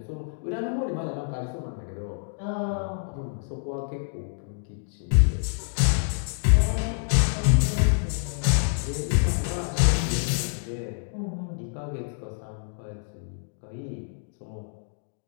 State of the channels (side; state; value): right; silent; digital silence